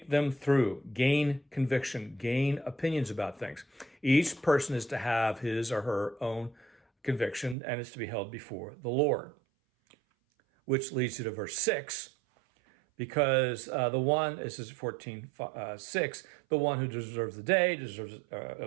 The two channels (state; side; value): drops out; left; at 7.6 s